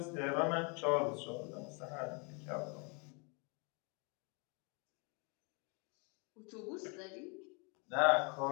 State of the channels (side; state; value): right; quieter; 34.3 dB